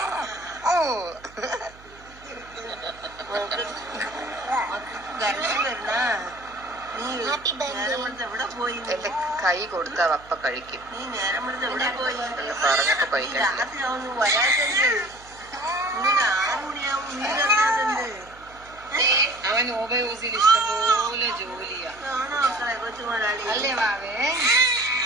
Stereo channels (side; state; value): right; noise; hum, 23 dB below the sound